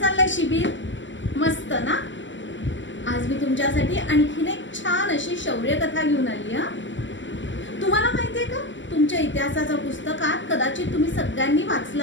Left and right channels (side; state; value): right; late; 0.54 ms